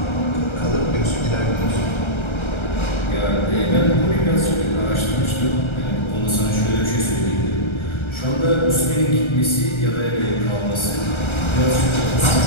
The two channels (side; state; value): right; late; 1.3 ms